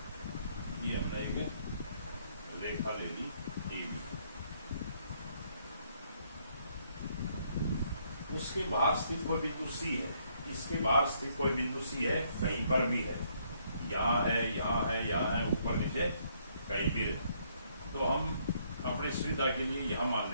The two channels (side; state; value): both; inverted; correlation -0.69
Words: ये हमने एक रेखा ले ली AB। उसके बाहर स्थित कोई बिंदु C है। इसके बाहर स्थित कोई बिंदु C है, कहीं पर भी है, यहाँ है, यहाँ है, यहाँ है, ऊपर नीचे कहीं भी है। तो हम अपनी सुविधा के लिए यहाँ मान